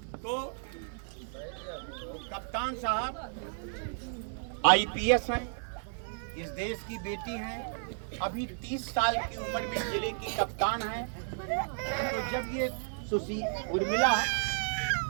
तो कप्तान साहब आईपीएस हैं, इस देश की बेटी हैं, अभी 30 साल की उम्र में जिले की कप्तान हैं। तो जब ये उर्मिला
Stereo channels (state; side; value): silent; left; 56 dB below the other